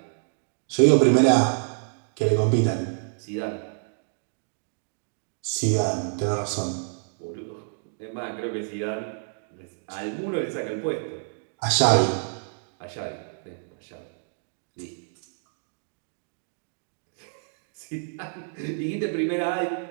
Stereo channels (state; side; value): silent; left; digital silence